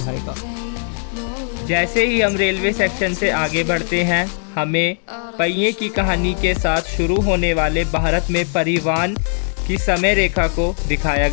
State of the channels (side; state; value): right; silent; digital silence